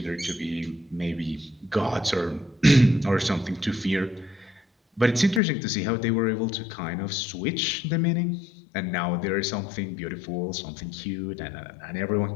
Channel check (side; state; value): right; drops out; at 5.4 s